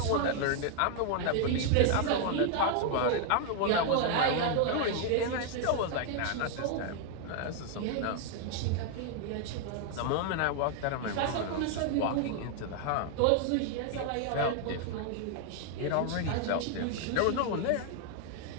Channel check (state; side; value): different; both; correlation 0.00